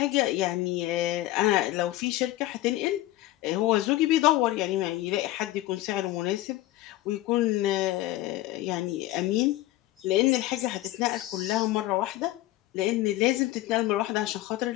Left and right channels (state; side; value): quieter; right; 16.3 dB